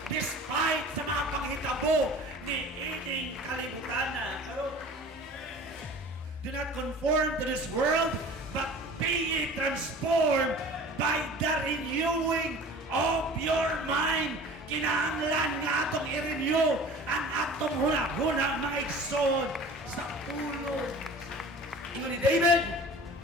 despite sa mga panghitabo ni ining kalibutan na. Do not conform to this world, but be ye transformed by the renewing of your mind. Kinahanglan nga atong i-renew ang atong huna-huna, mga igsoon, sa pulo. Ingon ni David,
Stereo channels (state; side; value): normal; both; correlation 0.42